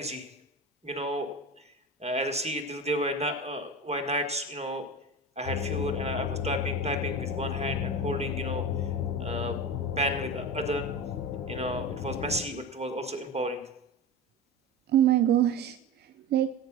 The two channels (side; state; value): both; normal; correlation 0.26